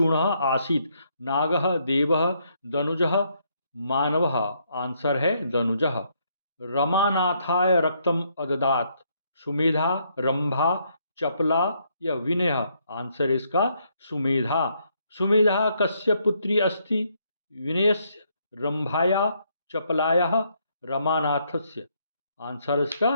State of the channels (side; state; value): both; inverted; correlation -0.73